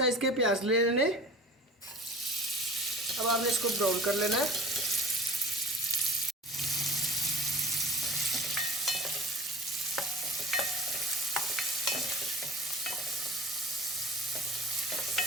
के प्याज ले लेने। अब आपने इसको ब्राउन कर लेना है।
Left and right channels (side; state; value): both; normal; correlation 0.42